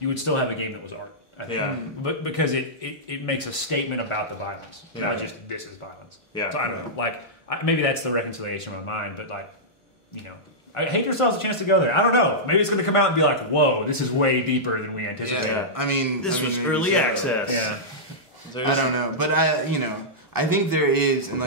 would still have a game that was art. I think. But because it makes a statement about the violence, not just this is violence. So I don't know, like maybe that's the reconciliation in my mind, but like you know. Hatred still has a chance to go there. I don't know. Maybe it's going to come out and be like, "Whoa, this is way deeper than we anticipated." Yeah. I mean, this was early access. Yeah. I don't know, but I think there is, and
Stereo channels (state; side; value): normal; both; correlation -0.12